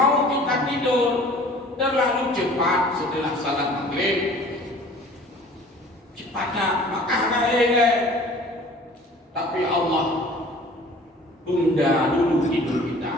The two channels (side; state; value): both; normal; correlation 0.48